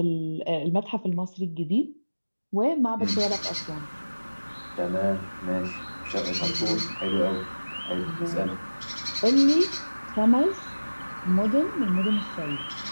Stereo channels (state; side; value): inverted; both; correlation -1.00